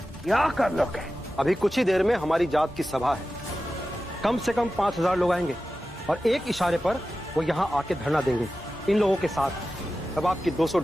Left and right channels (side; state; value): both; normal; correlation 0.94